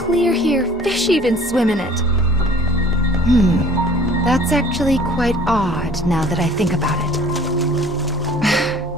here, fish even swim in it. That's actually quite odd now that I think about it.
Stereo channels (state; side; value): normal; both; correlation 0.51